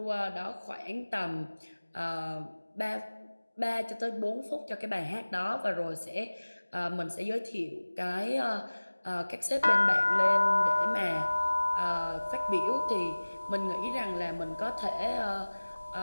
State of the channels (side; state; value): both; inverted; correlation -1.00